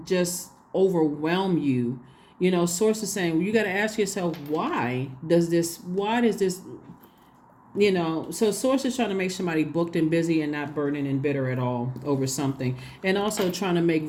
just overwhelm you. Source is saying, well, you got to ask yourself, why does this, so source is trying to make somebody booked and busy and not burning and bitter at all over something, and also trying to make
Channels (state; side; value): identical; both; correlation 1.00